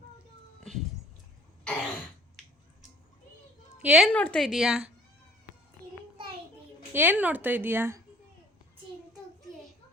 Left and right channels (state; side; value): normal; both; correlation 0.54